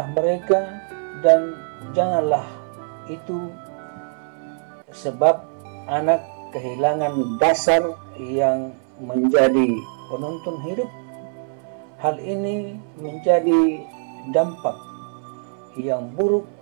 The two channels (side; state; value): left; silent; 62 dB below the other